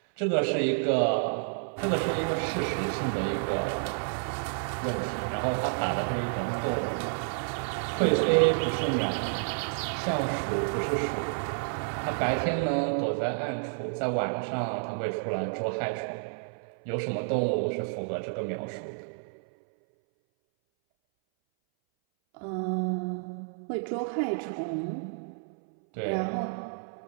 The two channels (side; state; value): left; silent; 58 dB below the other